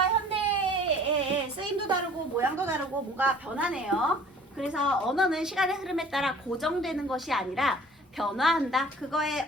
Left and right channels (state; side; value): normal; both; correlation 0.50